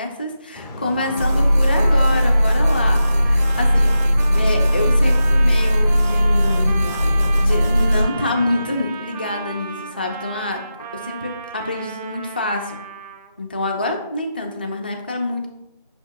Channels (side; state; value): both; inverted; correlation -0.89